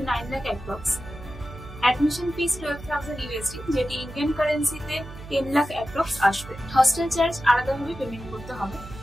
lakh approx. Admission fees $12,000 USD, যেটি ইন্ডিয়ান কারেন্সিতে 10 লাখ অ্যাপ্রক্স আসবে। হস্টেল চার্জ আলাদাভাবে পেমেন্ট করতে হবে।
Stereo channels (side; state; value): right; noise; hum, 14 dB below the sound